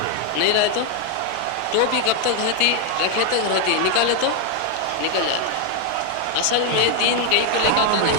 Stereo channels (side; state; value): both; different; correlation 0.00